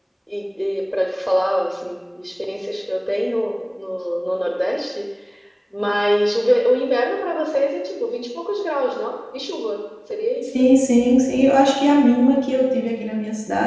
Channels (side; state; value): both; identical; correlation 1.00